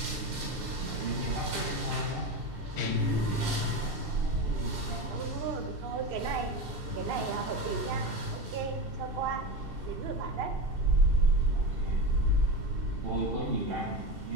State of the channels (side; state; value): left; late; 2.7 ms